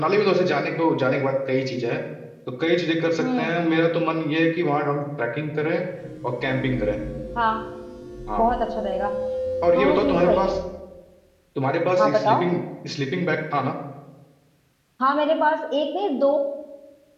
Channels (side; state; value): both; identical; correlation 1.00